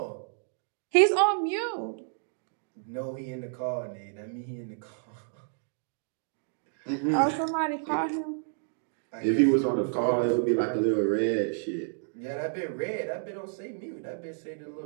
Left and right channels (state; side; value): silent; left; digital silence